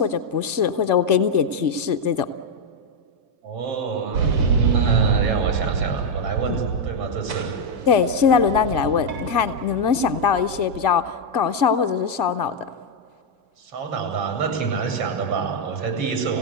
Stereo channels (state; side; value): late; left; 2.1 ms